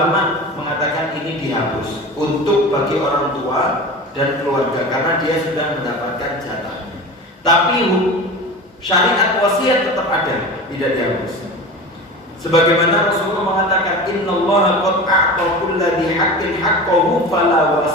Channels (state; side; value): normal; both; correlation 0.32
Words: mengatakan ini dihapus untuk bagi orang tua dan keluarga karena dia sudah mendapatkan jatahnya. Tapi syariat wasiat tetap ada, tidak dihapus. Sebagaimana Rasulullah mengatakan, innallaha qad a'ta kulli haqqin haqqahu fala